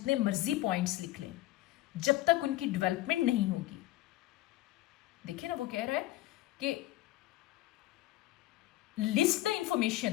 मर्जी पॉइंट्स लिख लें, जब तक उनकी डेवलपमेंट नहीं होगी, देखिए ना वो कह रहा है कि list the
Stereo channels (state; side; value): quieter; right; 15.9 dB